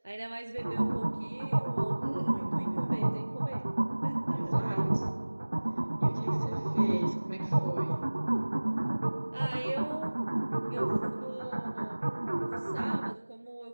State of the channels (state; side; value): inverted; both; correlation -1.00